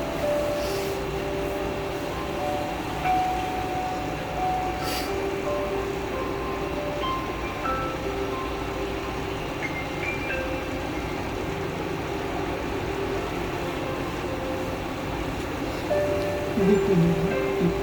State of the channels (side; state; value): both; identical; correlation 1.00